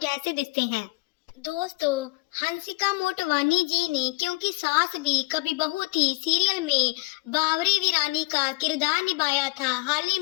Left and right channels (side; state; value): right; quieter; 25.1 dB